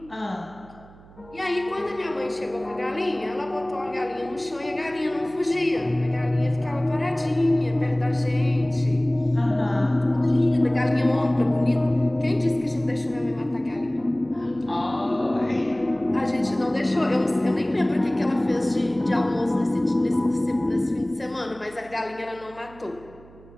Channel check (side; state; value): right; noise; hum, 23 dB below the sound